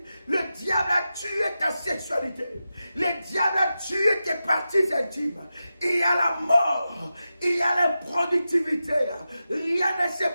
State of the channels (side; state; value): both; inverted; correlation -0.91